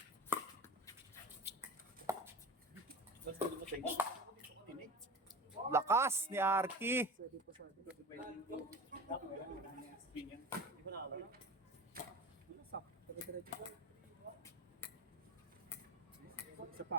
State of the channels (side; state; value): both; normal; correlation 0.33